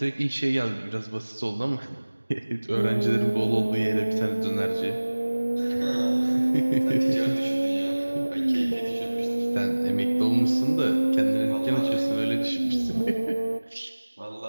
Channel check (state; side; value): inverted; both; correlation -1.00